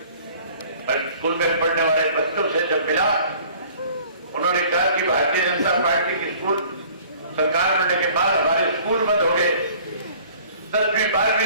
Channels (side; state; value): both; inverted; correlation -0.51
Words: और स्कूल में पढ़ने वाले बच्चों से जब मिला, उन्होंने कहा कि भारतीय जनता पार्टी की स्कूल सरकार बनने के बाद हमारे स्कूल बंद हो गए। 10वीं